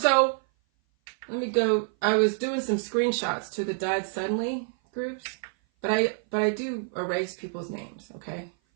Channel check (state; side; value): silent; left; 57 dB below the other